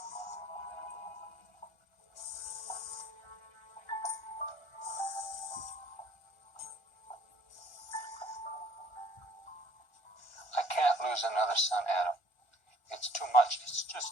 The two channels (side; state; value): right; late; 1.4 ms